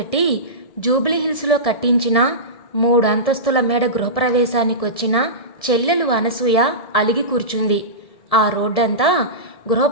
జూబ్లీహిల్స్లో కట్టించిన 3 అంతస్తుల మేడ గృహప్రవేశానికి వచ్చిన చెల్లెలు అనసూయ అలిగి కూర్చుంది. ఆ రోడ్డంతా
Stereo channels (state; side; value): late; right; 1.7 ms